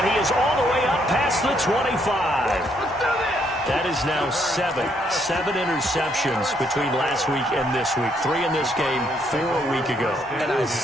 he is all the way up past the 25. That is now 7 interceptions between last week and this week. 3 in this game, 4 a week ago. And I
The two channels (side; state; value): both; normal; correlation 0.72